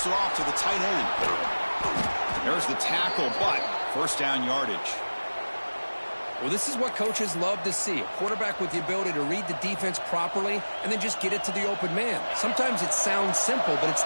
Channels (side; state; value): both; inverted; correlation -1.00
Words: it off to the tight end. There's the tackle, but first down yardage. Well, this is what coaches love to see. A quarterback with the ability to read the defense properly and then just get it to the open man. Sometimes it sounds simple, but it's